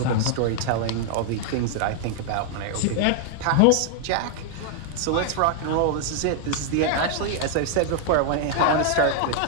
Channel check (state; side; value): different; both; correlation 0.00